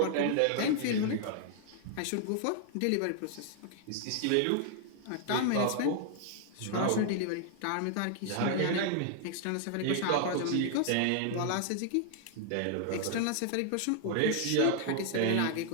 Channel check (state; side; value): different; both; correlation 0.00